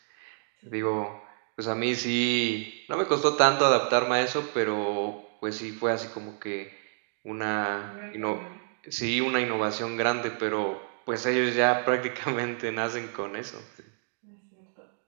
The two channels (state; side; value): silent; left; digital silence